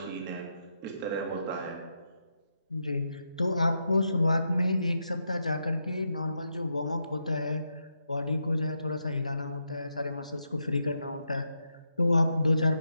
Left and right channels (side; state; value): both; inverted; correlation -0.84